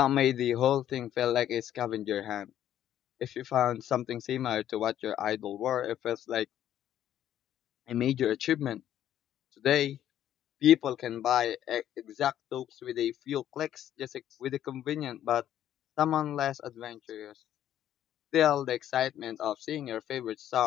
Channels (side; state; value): right; quieter; 11.3 dB